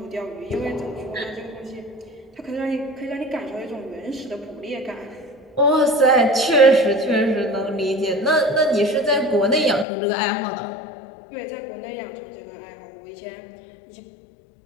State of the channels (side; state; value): right; drops out; at 9.9 s